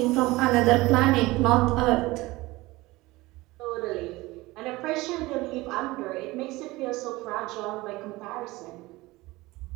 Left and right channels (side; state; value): left; quieter; 20.3 dB